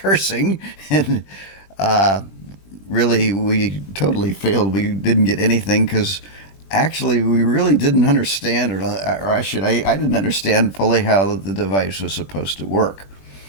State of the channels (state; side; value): late; right; 21 ms